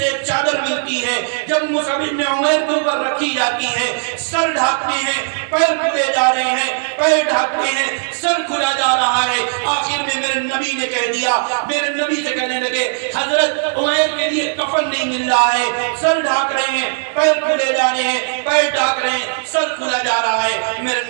ایک چادر ملتی ہے، جب مصعب بن عمیر کے اوپر رکھی جاتی ہے، سر ڈھانپتے ہیں، پیر کھلے جا رہے ہیں، پیر ڈھانپتے ہیں، سر کھلا جا رہا ہے، آخر میں میرے نبی نے کہہ دیا، میرے نبی سے کہنے لگے حضرت عمیر کے لیے کفن نہیں مل رہا ہے، سر ڈھانپ رہے ہیں، پیر کھلے جا رہے ہیں، پیر ڈھانپ رہے ہیں، سر کھلا جا رہا ہے،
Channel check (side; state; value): left; silent; 68 dB below the other